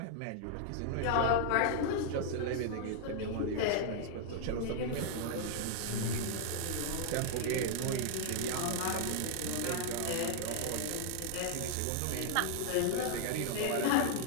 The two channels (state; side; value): different; both; correlation -0.01